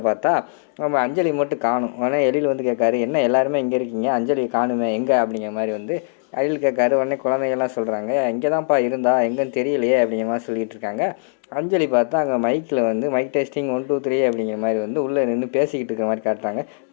பார்த்தா நம்ம அஞ்சலி மட்டும் காணும். உடனே எழில் வந்து கேட்காரு, என்ன எல்லாருமே இங்கே இருக்கீங்க, அஞ்சலி காணுமே எங்கே அப்படிங்கிற மாதிரி வந்து எழில் கேட்காரு. உடனே குழந்தைகள்லாம் சொல்கிறாங்க, இங்கே தான்ப்பா இருந்தா எங்கேன்னு தெரியலையே அப்படிங்கிற மாதிரி சொல்லிகிட்டு இருக்காங்க. அஞ்சலி பார்த்தா அங்கே மைக்கில் வந்து மைக் டெஸ்டிங் 1 2 3 அப்படிங்கிற மாதிரி வந்து உள்ளே நின்று பேசிக்கிட்டு இருக்கிற மாதிரி காட்டுறாங்க.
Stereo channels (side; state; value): right; silent; digital silence